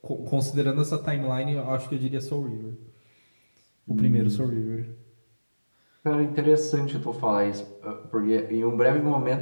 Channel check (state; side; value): inverted; both; correlation -1.00